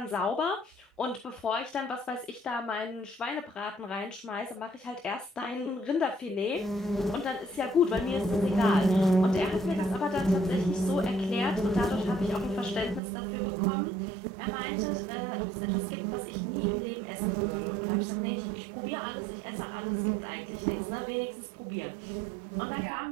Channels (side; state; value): left; drops out; at 13.0 s